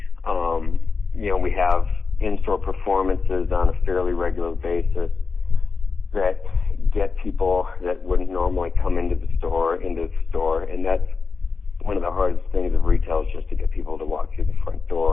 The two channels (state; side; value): quieter; right; 4.7 dB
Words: We have in-store performances on a fairly regular basis that get people that wouldn't normally come into the store, and that's one of the hardest things of retail, is just to get people to walk through the front